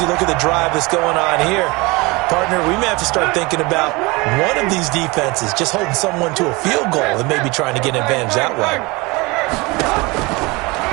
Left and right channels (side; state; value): left; quieter; 24.8 dB